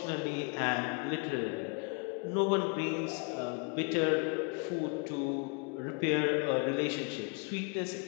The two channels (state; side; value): quieter; right; 34.4 dB